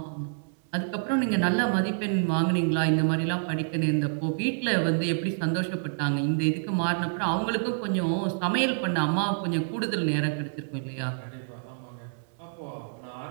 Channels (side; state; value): left; silent; digital silence